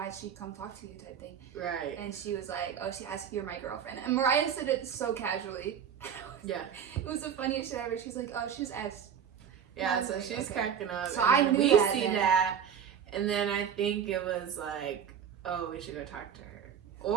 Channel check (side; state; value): left; quieter; 8.1 dB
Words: she come talk to you type thing? Right. And she was like, oh, she asked if you were my girlfriend. And Mariah said it so casually. Yeah. It was the funniest shit ever. She's like, oh, she just asked. Yeah, so like, she's cracking up. So I knew we that see then. that, and then I think it was like, oh, we should go talk to her.